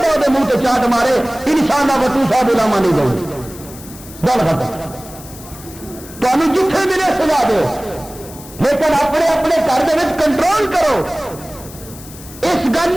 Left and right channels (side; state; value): left; noise; hiss, 17 dB below the sound